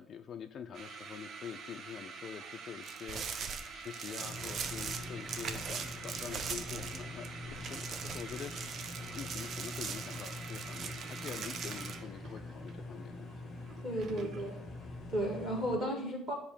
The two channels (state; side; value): normal; both; correlation 0.62